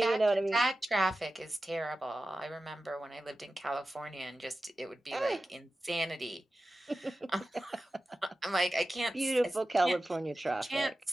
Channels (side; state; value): both; normal; correlation 0.94